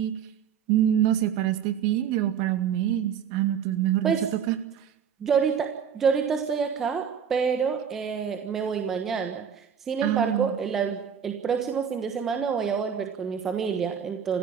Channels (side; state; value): left; quieter; 7.9 dB